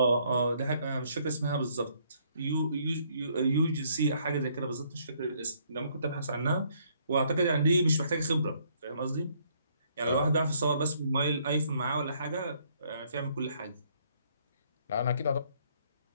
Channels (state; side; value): inverted; both; correlation -0.67